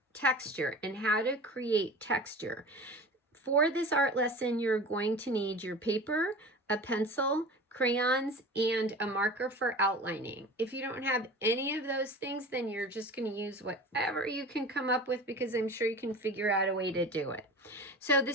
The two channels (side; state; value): both; normal; correlation 0.36